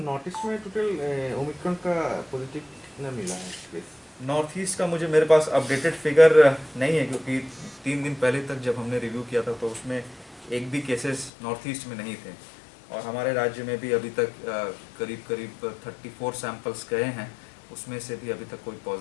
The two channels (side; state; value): right; drops out; at 11.3 s